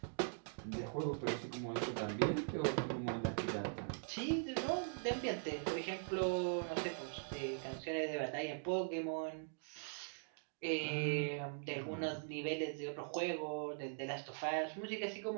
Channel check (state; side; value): silent; left; digital silence